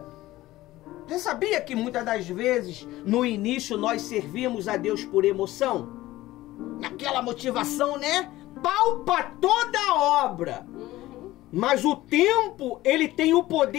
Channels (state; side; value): quieter; right; 16.7 dB